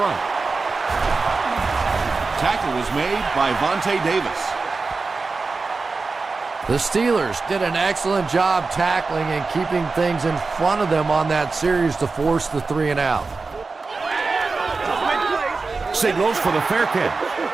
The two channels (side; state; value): left; quieter; 4.1 dB